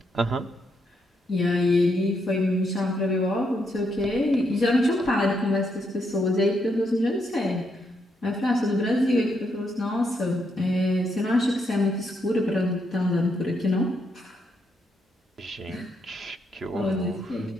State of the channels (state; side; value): normal; both; correlation 0.78